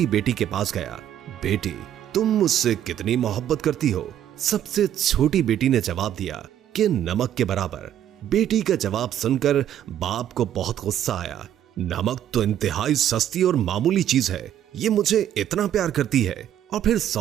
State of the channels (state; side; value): quieter; left; 10.8 dB